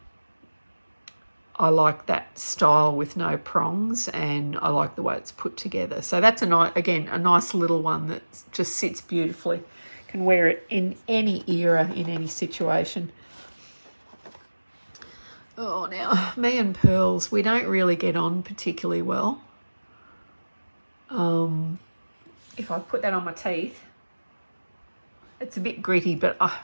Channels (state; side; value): inverted; both; correlation -1.00